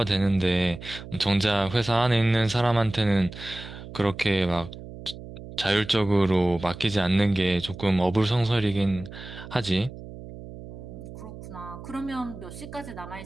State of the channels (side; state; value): right; noise; hum, 13 dB below the sound